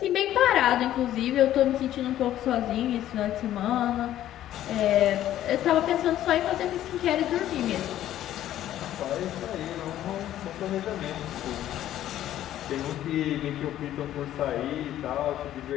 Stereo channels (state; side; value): quieter; right; 12.5 dB